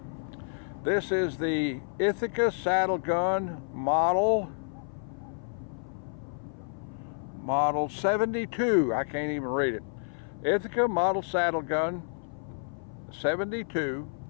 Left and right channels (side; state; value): right; silent; 55 dB below the other